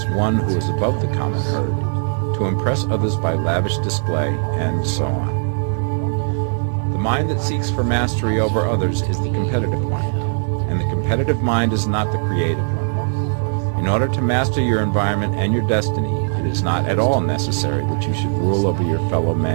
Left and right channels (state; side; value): silent; left; digital silence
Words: one who is above the common herd, to impress others by lavish display, and so on. The mind that seeks for mastery over others is the competitive mind, and the competitive mind is not the creative one. In order to master your environment and your destiny, it is not at all necessary that you should rule over your fellow